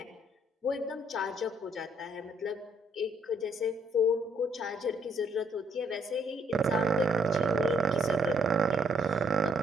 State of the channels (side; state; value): both; normal; correlation 0.69